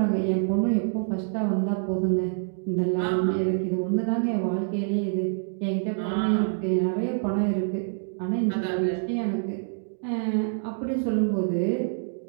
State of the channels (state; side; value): silent; left; digital silence